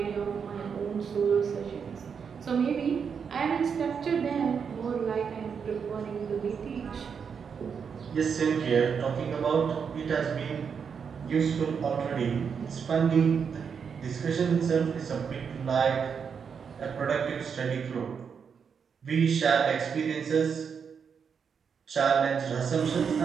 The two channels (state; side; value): quieter; left; 6.5 dB